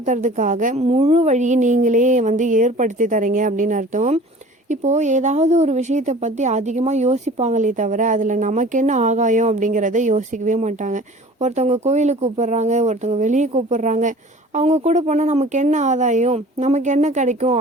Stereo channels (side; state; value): both; normal; correlation 0.45